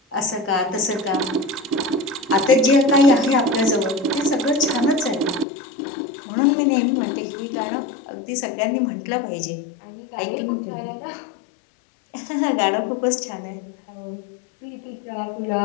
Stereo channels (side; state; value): right; drops out; at 5.5 s